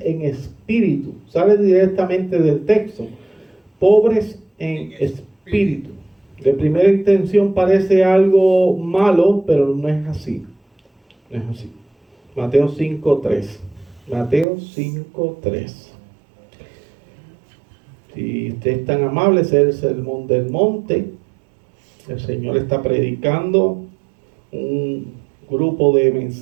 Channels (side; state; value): left; drops out; at 14.5 s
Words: en Espíritu. Sale directamente del texto. Pobres en Espíritu. De primera intención parece algo malo, pero no es así. No es así. Mateo 5:3. Mateo 5:3. Si usted es tan amable, es el sermón del monte. El Señor está predicando un grupo de